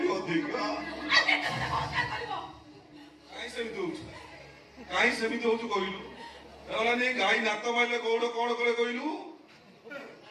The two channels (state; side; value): identical; both; correlation 1.00